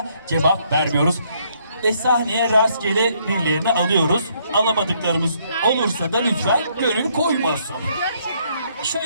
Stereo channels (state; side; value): inverted; both; correlation -0.69